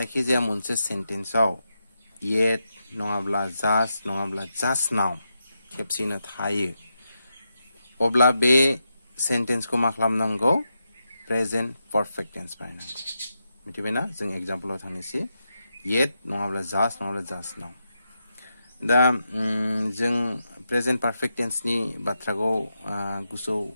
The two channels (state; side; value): inverted; both; correlation -0.86